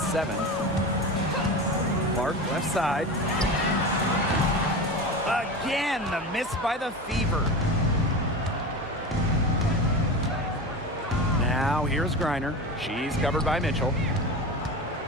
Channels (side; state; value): both; normal; correlation 0.27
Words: 7. Clark left side. Again, the miss by the Fever. Now here's Griner. She's covered by Mitchell.